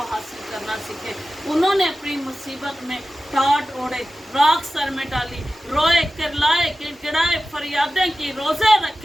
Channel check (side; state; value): both; normal; correlation 0.95